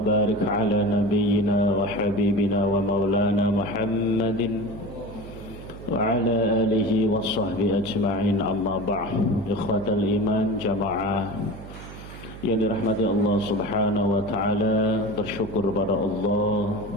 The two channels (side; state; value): right; noise; hum, 14 dB below the sound